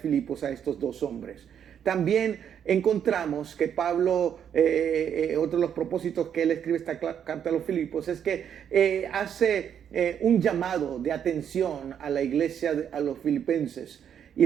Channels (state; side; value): quieter; left; 8.7 dB